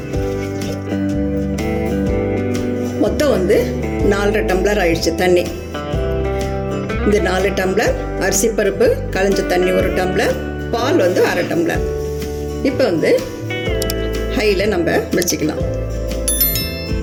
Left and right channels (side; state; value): both; identical; correlation 1.00